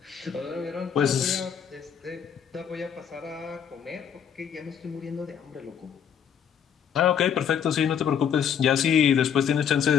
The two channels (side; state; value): right; quieter; 8.2 dB